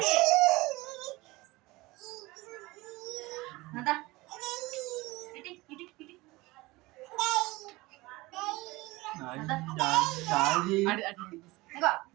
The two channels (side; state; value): left; quieter; 21.2 dB